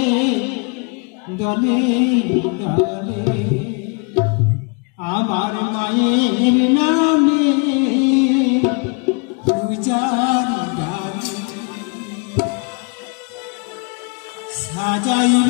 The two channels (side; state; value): right; quieter; 34.6 dB